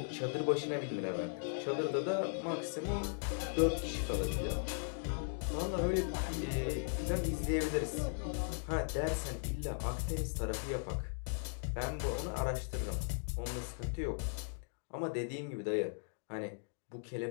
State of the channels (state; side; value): silent; right; digital silence